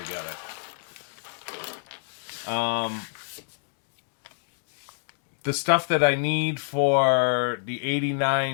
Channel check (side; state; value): right; silent; digital silence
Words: together. The stuff that I need for the